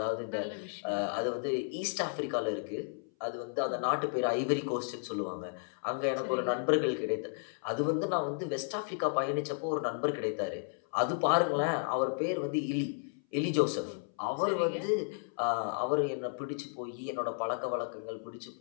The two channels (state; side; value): silent; right; 56 dB below the other